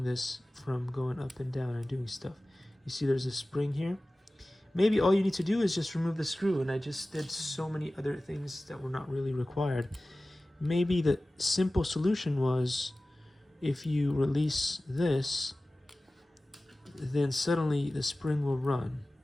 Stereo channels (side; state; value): both; normal; correlation 0.97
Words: this from going up and down and doing stuff. You see there's a spring here. Maybe all you need to do is just remove the screw, and I just did so many other things that were not really required. Maybe the simple solution was if you release this, then suddenly the spring will run.